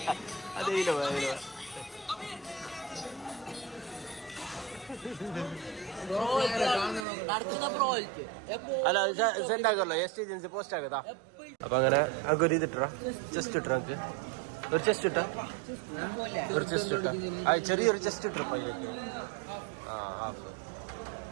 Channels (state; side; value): drops out; left; at 7.1 s